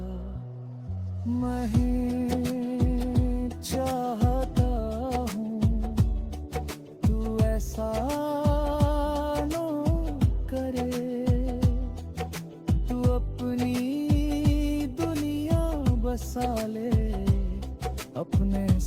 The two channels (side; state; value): both; identical; correlation 1.00